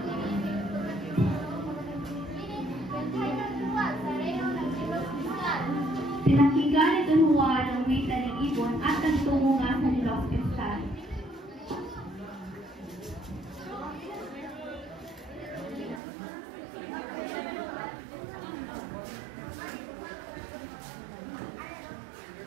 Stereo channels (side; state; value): left; drops out; at 16.0 s